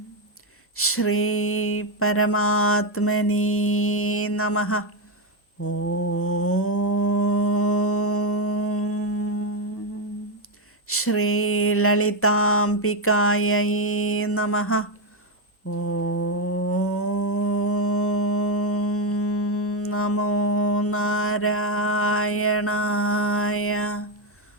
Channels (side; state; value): both; normal; correlation 0.06